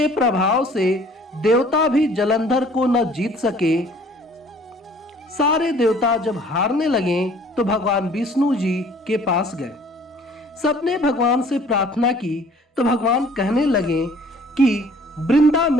प्रभाव से देवता भी जलंधर को न जीत सके। सारे देवता जब हारने लगे तो भगवान विष्णु जी के पास गए। सबने भगवान से प्रार्थना की तो भगवान कहने लगे कि वृंदा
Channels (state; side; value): normal; both; correlation 0.54